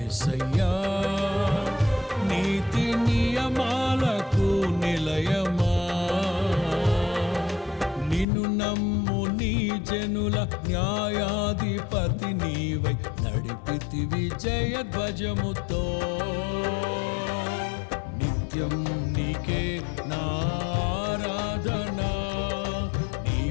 నీతి నియమాలకు నిలయమా, నిన్ను నమ్ము నీ జనుల న్యాయాధిపతి నీవై నడిపితివి జయధ్వజముతో. నిత్యం నీకే నా ఆరాధన,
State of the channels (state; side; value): drops out; right; at 8.2 s